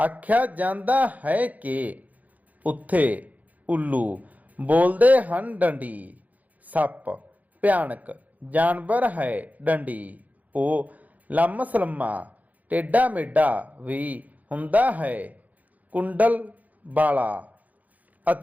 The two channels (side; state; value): left; late; 0.077 ms